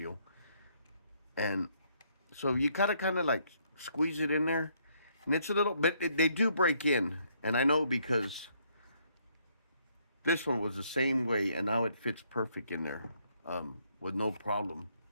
And so you kind of like squeeze it in there. And it's a little bit, they do break in. And I know because this one was the same way and now it fits perfect in there with no problem.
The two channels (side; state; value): both; inverted; correlation -0.70